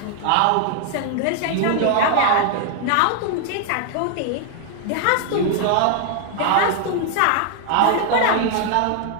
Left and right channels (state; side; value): different; both; correlation 0.00